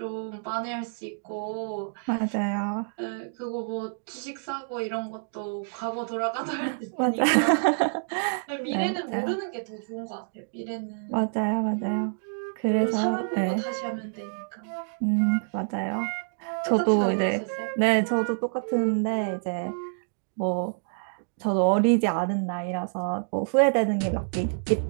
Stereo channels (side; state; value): left; silent; digital silence